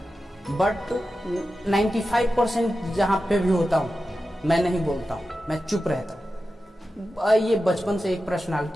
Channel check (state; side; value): normal; both; correlation 0.92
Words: बट 95% जहाँ पे भी होता हूँ मैं नहीं बोलता हूँ, मैं चुप रहता हूँ। ये बचपन से एक